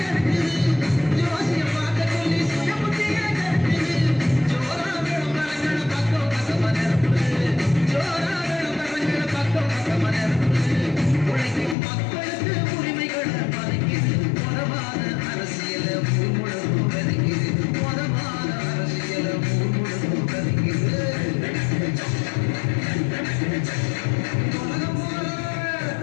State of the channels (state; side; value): drops out; right; at 11.8 s